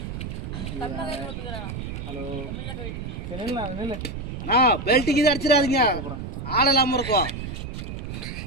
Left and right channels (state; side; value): noise; right; rumble, 6 dB below the sound